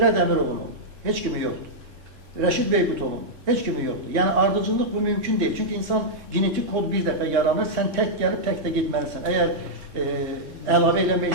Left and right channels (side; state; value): left; late; 3.9 ms